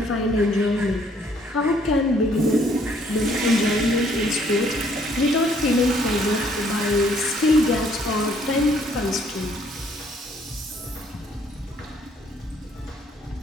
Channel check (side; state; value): both; normal; correlation 0.64